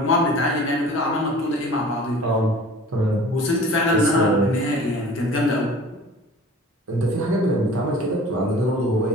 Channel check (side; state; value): both; normal; correlation 0.44